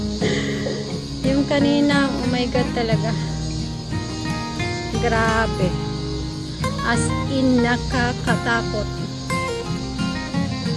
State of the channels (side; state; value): both; identical; correlation 1.00